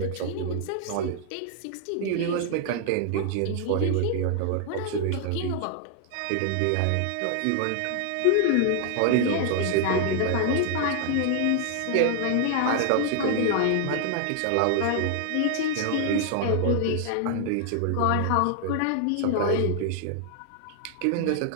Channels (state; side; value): different; both; correlation 0.00